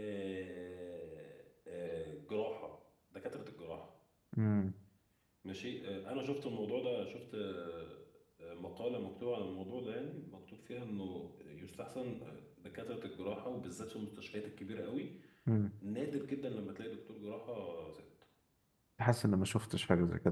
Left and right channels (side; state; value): both; identical; correlation 1.00